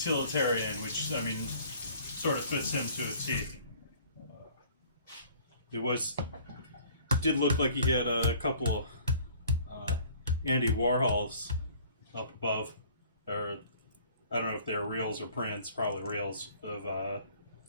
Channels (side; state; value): both; inverted; correlation -0.52